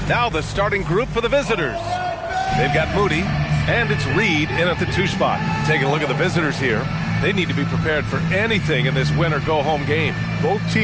Now the starting group for the visitors. They've got Moody, and it's Reed in at the 2 spot. Taking a look at the visitors here. They need to be prepared for anything in this win-or-go-home game. Both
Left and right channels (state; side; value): identical; both; correlation 1.00